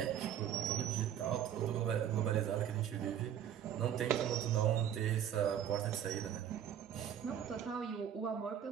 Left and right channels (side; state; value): left; quieter; 9.8 dB